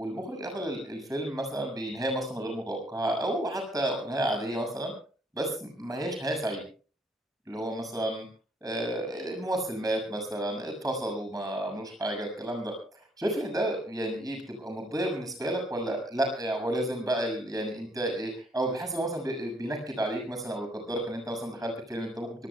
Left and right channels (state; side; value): normal; both; correlation 0.66